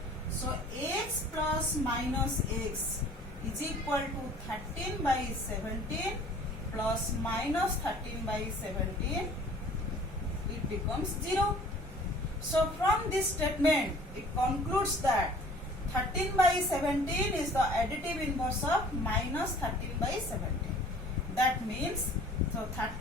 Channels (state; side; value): normal; both; correlation 0.50